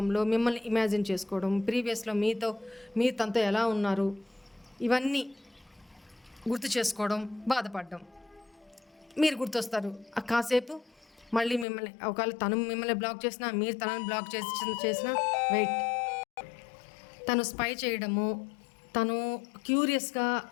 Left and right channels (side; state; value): right; drops out; at 11.7 s